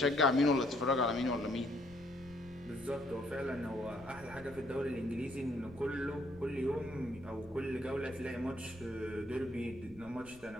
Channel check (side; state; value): left; noise; rumble, 22 dB below the sound